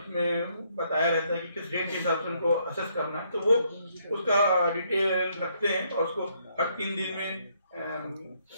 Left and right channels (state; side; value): inverted; both; correlation -0.71